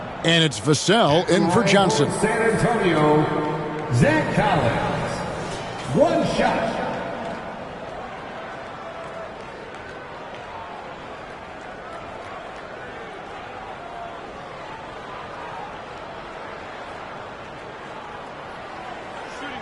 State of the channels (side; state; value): both; identical; correlation 1.00